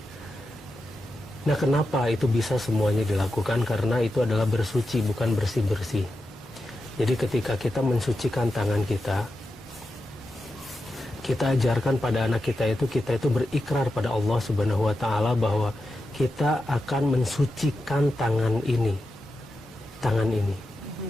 Nah, kenapa itu bisa semuanya dilakukan? Karena itu adalah bersuci, bukan bersih-bersih. Jadi ketika kita mensucikan tangan kita ajarkan pada anak kita itu berikrar pada Allah Subhanahu wa Ta'ala bahwa kita akan mensucikan tangan ini,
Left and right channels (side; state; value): both; normal; correlation 0.89